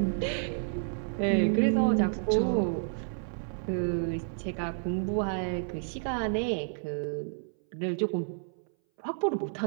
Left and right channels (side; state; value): left; silent; 58 dB below the other